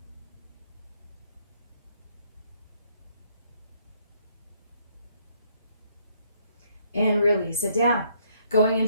And release it down. Going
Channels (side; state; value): both; inverted; correlation -0.68